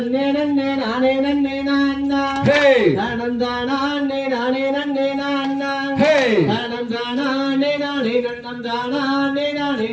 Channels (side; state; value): both; identical; correlation 1.00